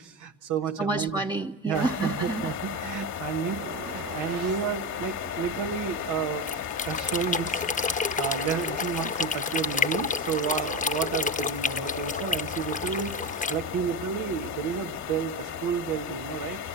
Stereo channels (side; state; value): both; normal; correlation 0.19